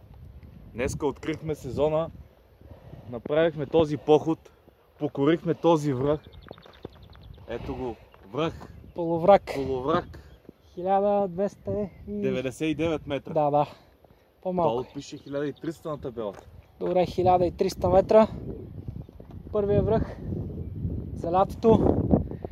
Днеска открихме сезона, направихме този поход, покорихме този връх. Ето го, връх, Полуврак. полуврак, 1299 метра. Да. По-малко. Долу пише 1300 на табелата. Добре, 1300 метра. Първия връх за лятото.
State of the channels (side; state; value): both; identical; correlation 1.00